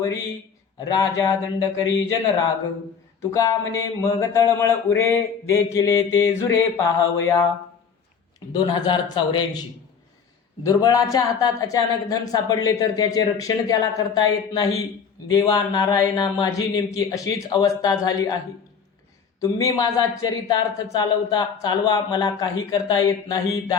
राजा दंड करी जनराग. तुका म्हणे मग तळमळ उरे, देखिले ते जुरे पाहावया. 2084. दुर्बळाच्या हातात अचानक धन सापडले तर त्याचे रक्षण त्याला करता येत नाही. देवा नारायणा, माझी नेमकी अशीच अवस्था झाली आहे. तुम्ही माझा चरितार्थ चालवा, मला काही करता येत नाही.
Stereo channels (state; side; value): quieter; right; 6.3 dB